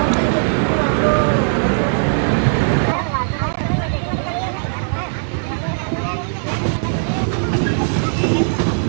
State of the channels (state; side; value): silent; left; digital silence